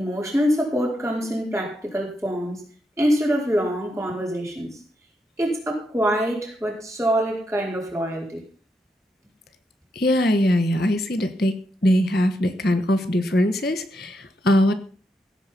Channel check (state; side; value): normal; both; correlation 0.82